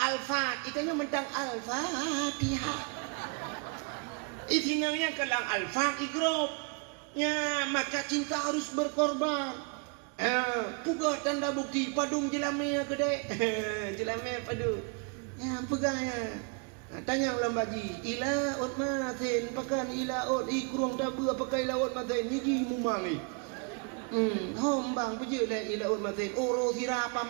alfa, ikannya mentang al-fatihah. Izinanya kelang alfa igrop. Ya, maka cinta harus berkorban. Pugah tanda bukti padung jelame gede. Jelame padu. Ya, pegahnya. Tanya ulang baji, ila ot mathen pakan ila ot ikrung tabu pakai ila ot mathen niji mumangi. Hom bang peje dah ila ot mathen oro sira apa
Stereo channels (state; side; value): quieter; left; 36.4 dB